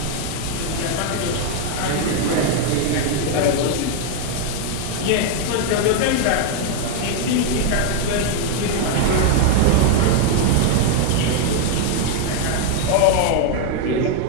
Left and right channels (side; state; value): both; different; correlation 0.00